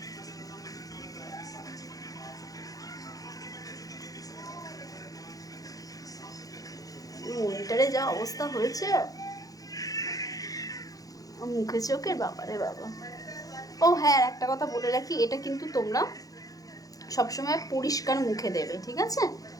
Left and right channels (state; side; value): late; right; 0.17 ms